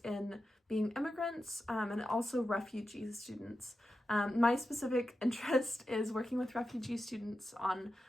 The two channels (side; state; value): both; normal; correlation 0.90